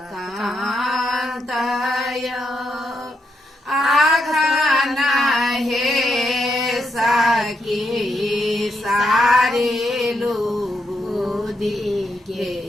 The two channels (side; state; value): both; normal; correlation 0.81